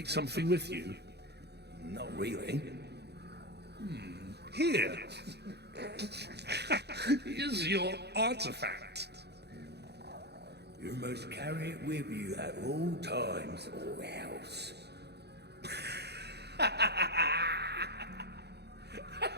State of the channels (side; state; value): left; late; 0.48 ms